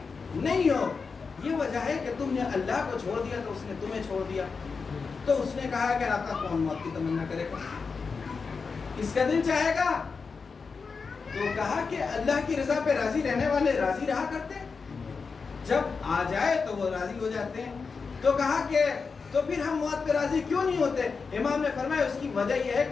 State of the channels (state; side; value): quieter; right; 5.0 dB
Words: نہیں ہو۔ یہ وجہ ہے کہ تم نے اللہ کو چھوڑ دیا تو اس نے تمہیں چھوڑ دیا۔ تو اس نے کہا کہ آقا کون موت کی تمنا کرے گا، کس کا دل چاہے گا؟ تو کہا کہ اللہ کی رضا پہ راضی رہنے والے راضی رہا کرتے ہیں، جب آ جائے تو وہ راضی ہو جاتے ہیں۔ تو کہا کہ تو پھر ہم موت پہ راضی کیوں نہیں ہوتے؟ امام نے فرمایا اس کی وجہ یہ ہے